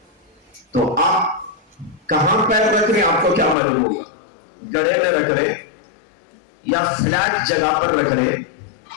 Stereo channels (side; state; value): right; drops out; at 3.6 s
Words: تو آپ کہاں پیر رکھ رہے ہیں آپ کو کیا معلوم ہوگا؟ گڑھے میں رکھ رہے یا فلیٹ جگہ پر رکھ رہے